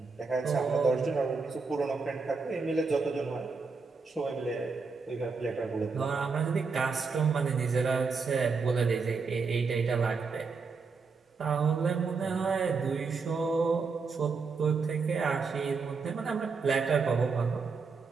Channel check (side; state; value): left; quieter; 4.7 dB